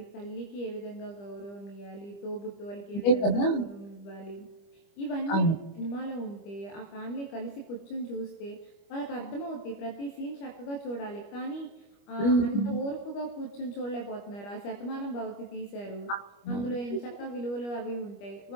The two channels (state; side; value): late; right; 25 ms